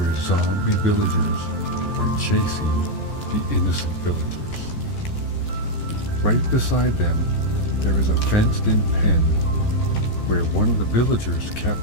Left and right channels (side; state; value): right; late; 14 ms